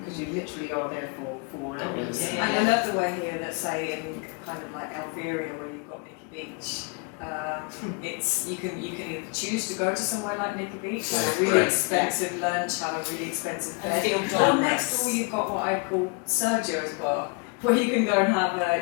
you literally are there for 4 hours. Yeah. And I love the way here that say in kind of like Elveria where you've got Nicky Beach. It's you can either choose to go to somewhere like Nicky Beach, have a really Correct. expensive lunch, have a really expensive And bed, feel or glamorous. next door you've got what I call Sergio's bar, where you can go and have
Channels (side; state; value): right; quieter; 33.9 dB